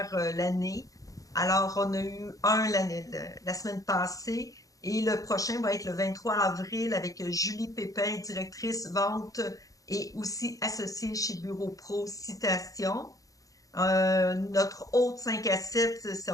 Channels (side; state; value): right; late; 0.17 ms